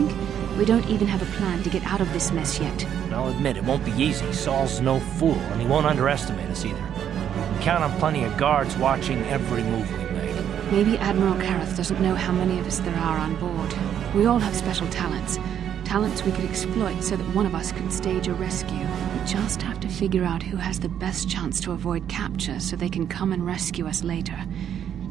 We don't even have a plan to get out of this mess yet. And I'll admit, it won't be easy. Saul's no fool, and he won't underestimate us either. We count on plenty of guards watching every move we make. Maybe Admiral Karrath doesn't know how many of us there are on board. We all have special talents. Talents we could exploit so that one of us can stage a rescue. We just have to figure out who has the best chance to avoid capture so they can come and rescue us later.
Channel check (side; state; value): left; quieter; 9.4 dB